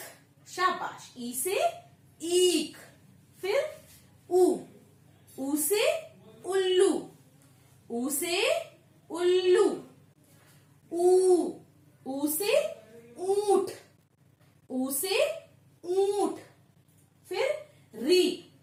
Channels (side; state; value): both; identical; correlation 1.00